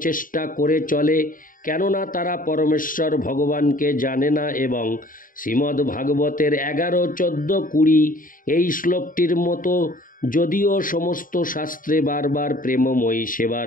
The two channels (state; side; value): late; right; 0.40 ms